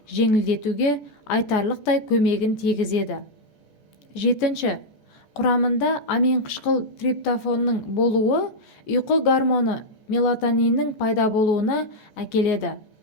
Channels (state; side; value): late; right; 14 ms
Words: жеңілдетуге айтарлықтай көмегін тигізеді. Жетінші, құрамында аминқышқыл триптофанның болуы ұйқы гормоны мелатониннің пайда болуына әкеледі.